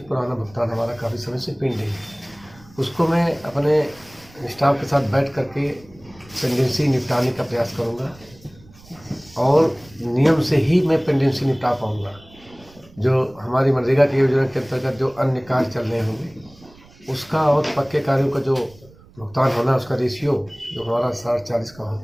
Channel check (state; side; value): noise; right; rumble, 25 dB below the sound